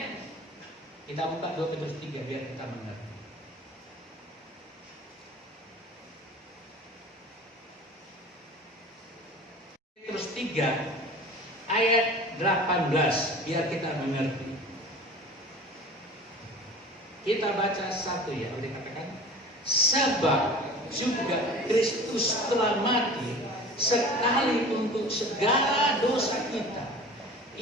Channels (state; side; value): normal; both; correlation 0.40